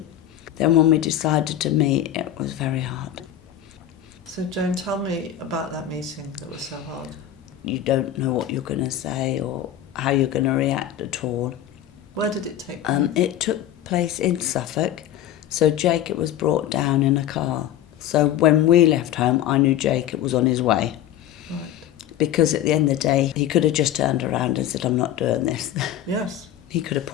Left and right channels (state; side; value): quieter; right; 11.3 dB